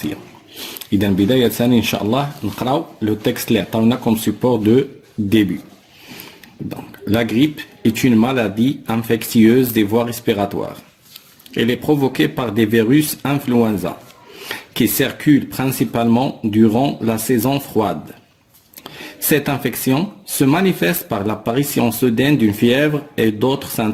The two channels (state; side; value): identical; both; correlation 1.00